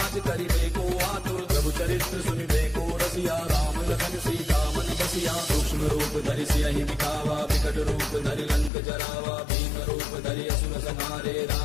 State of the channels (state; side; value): drops out; right; at 8.7 s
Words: करिबे को आतुर। प्रभु चरित्र सुनिबे को रसिया राम लखन सीता मन बसिया। सूक्ष्म रूप धरि सियहि दिखावा विकट रूप धरि लंक जरावा। भीम रूप धरि असुर संहारे